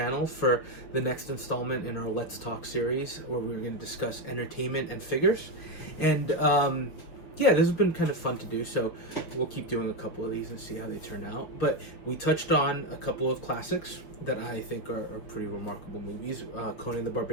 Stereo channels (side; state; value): right; late; 6.2 ms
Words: for the next installment in our Let's Talk series, where we're going to discuss entertainment and figures. And yeah, this has been kind of fun to do, so we'll keep doing a couple of these and see how they turn out. But we touched on a couple of classics that I think are pretty remarkable movies, Conan the